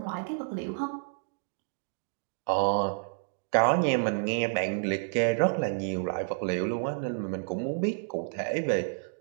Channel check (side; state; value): left; silent; digital silence